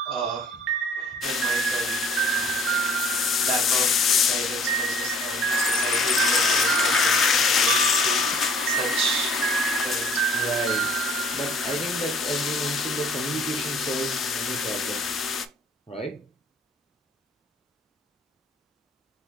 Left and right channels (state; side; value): normal; both; correlation 0.53